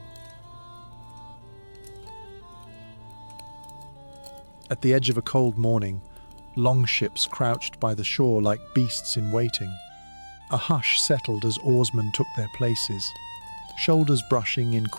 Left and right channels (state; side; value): inverted; both; correlation -1.00